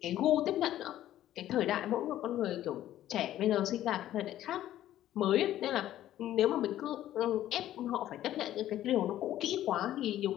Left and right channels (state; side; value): quieter; right; 12.9 dB